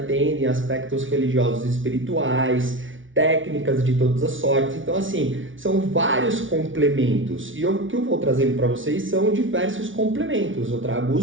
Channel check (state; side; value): late; left; 0.56 ms